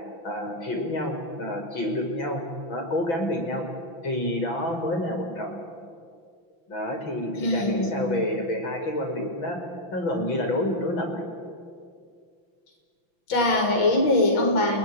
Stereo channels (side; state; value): right; late; 5.9 ms